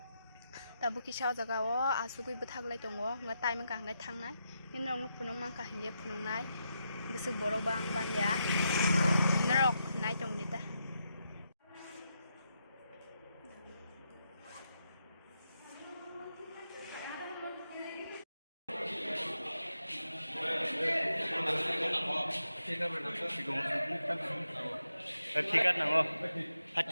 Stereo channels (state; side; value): inverted; both; correlation -0.84